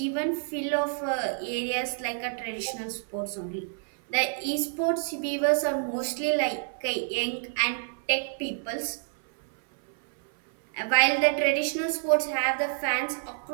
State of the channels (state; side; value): silent; left; 59 dB below the other